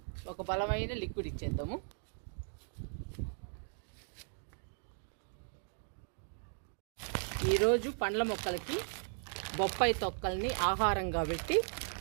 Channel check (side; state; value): left; silent; 53 dB below the other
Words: ఒక బలమైన లిక్విడ్ ఇచ్చేద్దాము. ఈరోజు పండ్ల మొక్కలకి బొప్పాయి తొక్కల్ని ఆహారంగా పెట్టి